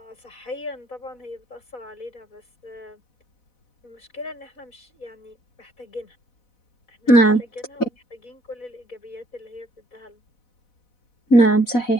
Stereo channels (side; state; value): right; late; 4.0 ms